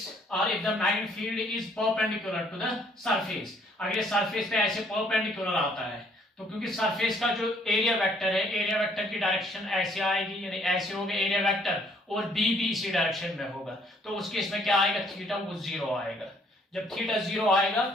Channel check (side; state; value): both; normal; correlation 0.64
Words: or if the magnetic field is perpendicular to the surface, अगर ये surface पे ऐसे perpendicular आता है तो क्योंकि surface का जो एरिया वेक्टर है, एरिया वेक्टर की डायरेक्शन ऐसे आएगी, यानी ऐसे होगा एरिया वेक्टर, और बी भी इसी डायरेक्शन में होगा, तो उस केस में क्या आएगा, थीटा वो 0 आएगा। जब थीटा 0 आएगा